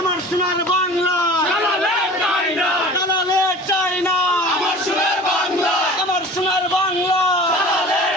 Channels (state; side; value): normal; both; correlation 0.41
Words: সোনার বাংলা, দালালের নাই নাই, দালালের চাই না, আমার সুরের বাংলা, আমার সোনার বাংলা, দালালের